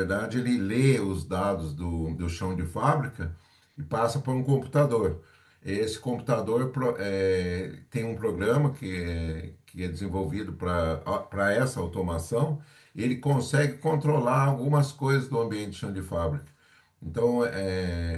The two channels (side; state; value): both; identical; correlation 1.00